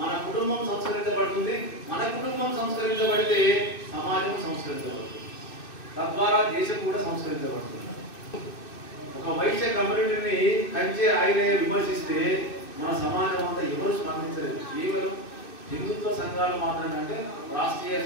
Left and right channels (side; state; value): right; late; 2.6 ms